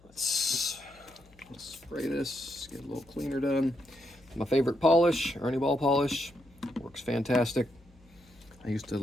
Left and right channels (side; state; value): left; noise; hum, 27 dB below the sound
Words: Let's spray this, get a little cleaner done. My favorite polish, Ernie ball polish, works fantastic. I used to